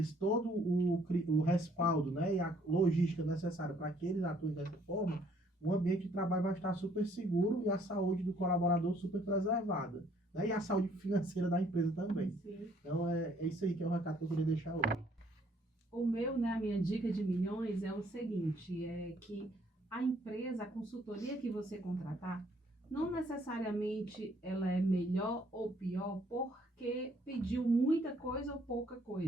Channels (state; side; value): normal; both; correlation 0.64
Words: todo o respaldo, né, e a logística necessária para que eles atuem dessa forma, o ambiente de trabalho vai estar super seguro e a saúde do colaborador super preservada, né, e a saúde financeira da empresa também. Sim. Então, é isso aí que é o recado que eu queria deixar hoje. O meu, né, a minha dica de milhões é o seguinte, é que a empresa, a consultoria que você contratar, não necessariamente ela é melhor ou pior porque pediu muita coisa ou pouca